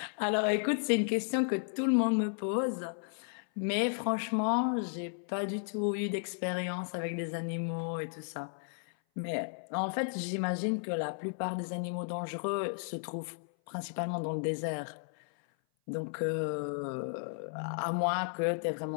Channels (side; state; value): right; silent; 55 dB below the other